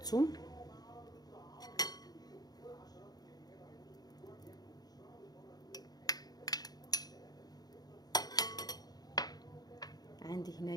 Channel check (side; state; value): right; late; 0.19 ms